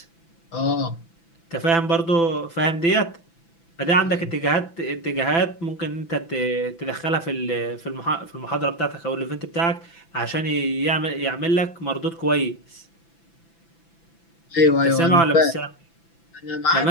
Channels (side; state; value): right; late; 6.0 ms